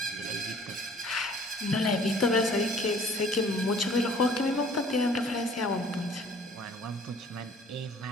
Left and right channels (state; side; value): normal; both; correlation 0.54